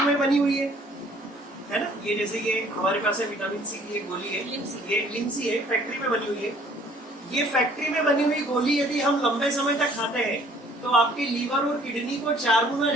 बनी हुई है ना। ये जैसे ये हमारे पास है विटामिन सी की एक गोली है, ये लिमसी है, फैक्ट्री में बनी हुई है। ये फैक्ट्री में बनी हुई गोली यदि हम लंबे समय तक खाते हैं तो आपके लीवर और किडनी को 4 गुना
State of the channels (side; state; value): both; normal; correlation 0.57